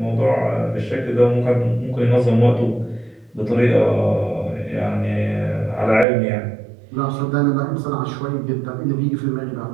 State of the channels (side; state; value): left; drops out; at 6.1 s